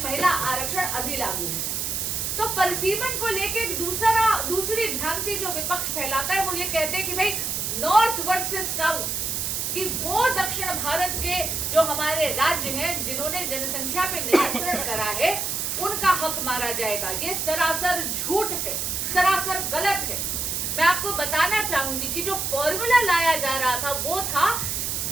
महिला आरक्षण अभी लागू हो। तो परिसीमन को लेके दूसरी भ्रांति जो विपक्ष फैलाता है, वो ये कहते हैं कि भाई नॉर्थ वर्सेस साउथ, कि वो दक्षिण भारत के जो हमारे राज्य हैं जिन्होंने जनसंख्या पे नियंत्रण करा है, उनका हक मारा जाएगा। ये सरासर झूठ है, सरासर गलत है। मैं आपको बताना चाहूंगी कि जो फॉर्मूला लाया जा रहा था वो था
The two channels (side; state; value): right; noise; hiss, 1 dB below the sound